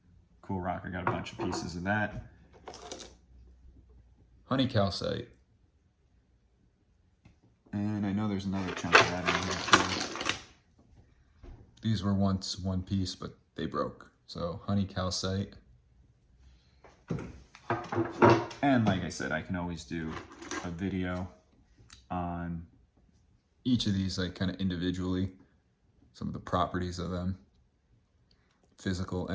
Cool rock. I got a bunch of pieces of that. Honey calcite. And I know there's another chunk of that in here too. These were once one piece, but they broke. So honey calcite. And like I said, I can always do a video on each of these, like kind of individually, some of the properties of them, physical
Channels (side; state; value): both; identical; correlation 1.00